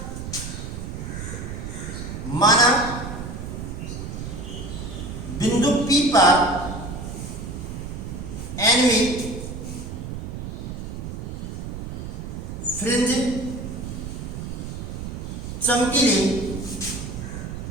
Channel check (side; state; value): right; noise; rumble, 7 dB below the sound